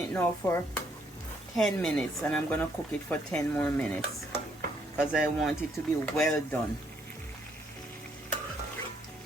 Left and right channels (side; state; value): both; normal; correlation 0.70